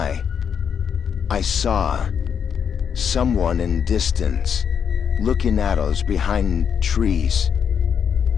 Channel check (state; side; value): quieter; right; 7.5 dB